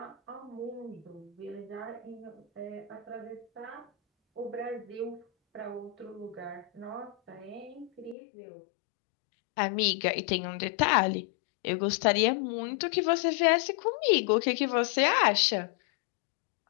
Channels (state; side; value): drops out; right; at 8.2 s